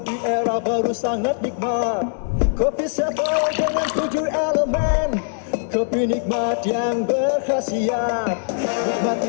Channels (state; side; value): silent; right; 65 dB below the other